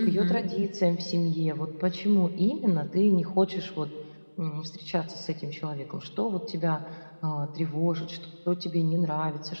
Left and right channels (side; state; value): both; inverted; correlation -1.00